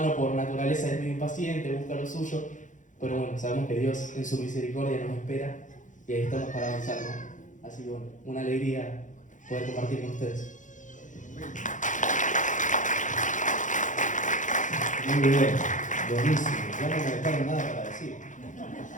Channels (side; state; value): right; late; 0.37 ms